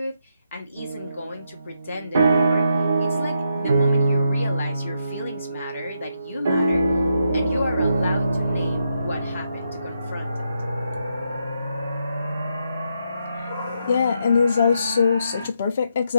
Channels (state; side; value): inverted; both; correlation -0.80